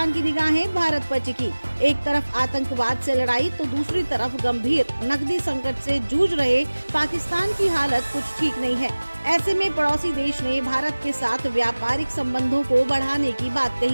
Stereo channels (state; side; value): inverted; both; correlation -1.00